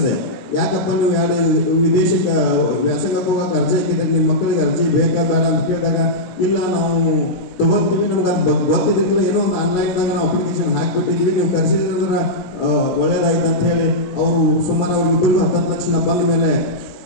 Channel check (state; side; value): late; right; 17 ms